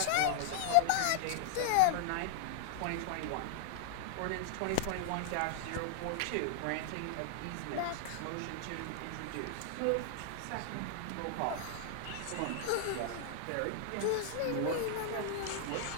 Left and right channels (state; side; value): different; both; correlation -0.01